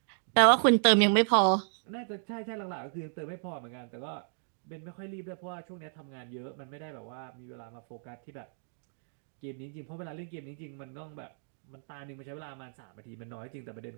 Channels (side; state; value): left; silent; digital silence